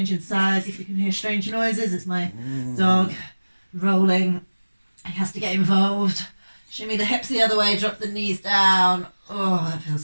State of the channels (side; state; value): both; inverted; correlation -1.00